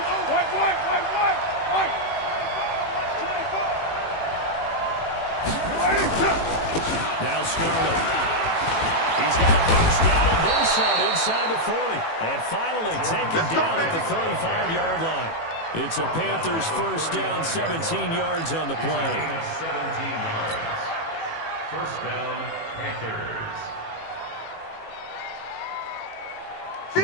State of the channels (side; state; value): right; late; 18 ms